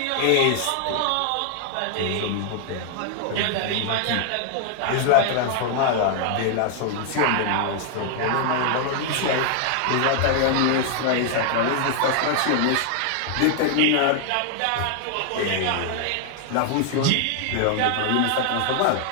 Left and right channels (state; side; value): different; both; correlation 0.00